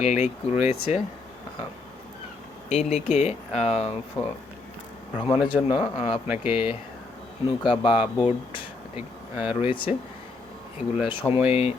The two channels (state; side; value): quieter; right; 3.7 dB